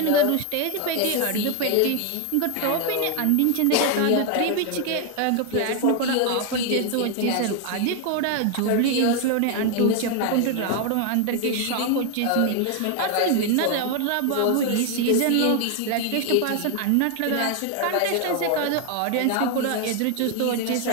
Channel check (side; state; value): both; different; correlation 0.00